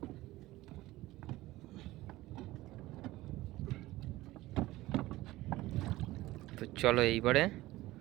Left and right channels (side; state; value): left; quieter; 17.7 dB